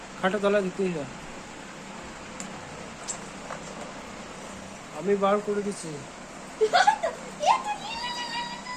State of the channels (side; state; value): both; identical; correlation 1.00